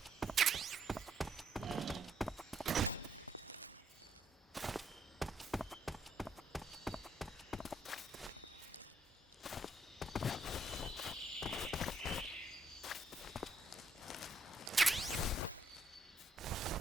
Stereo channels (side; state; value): both; normal; correlation 0.73